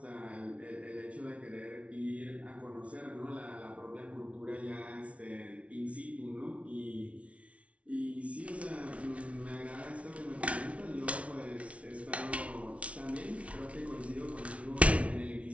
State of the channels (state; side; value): late; left; 0.063 ms